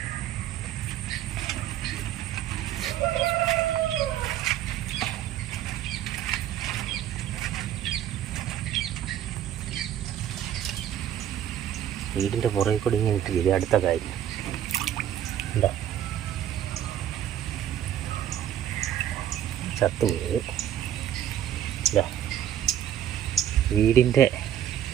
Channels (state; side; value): quieter; left; 10.9 dB